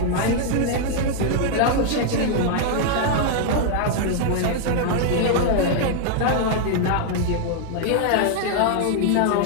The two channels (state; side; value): different; both; correlation 0.00